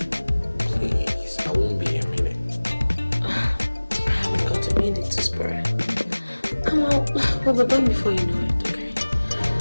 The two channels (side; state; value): both; inverted; correlation -1.00